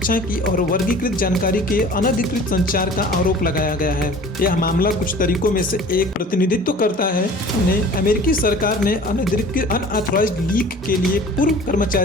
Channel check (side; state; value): both; normal; correlation 0.45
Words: की और वर्गीकृत जानकारी के अनधिकृत संचार का आरोप लगाया गया है। यह मामला कुछ तरीकों में से एक प्रतिनिधित्व करता है। उन्हें अमेरिकी सरकार ने अनऑथराइज्ड लीक के लिए पूर्व